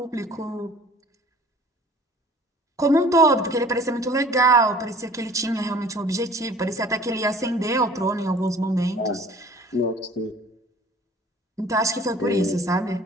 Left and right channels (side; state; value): both; normal; correlation 0.49